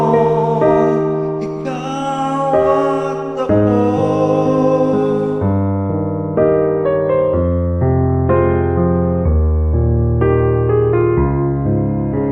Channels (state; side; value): identical; both; correlation 1.00